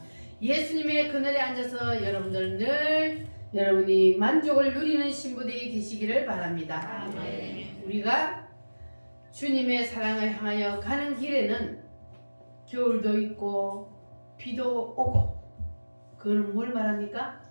예수님의 그늘에 앉아서 여러분들 늘 여러분이 만족을 누리는 신부들이 되시기를 바랍니다. 우리가 주님의 사랑을 향하여 가는 길에는 겨울도 있고 비도 오고 그건 뭘 말합니까?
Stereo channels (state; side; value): inverted; both; correlation -1.00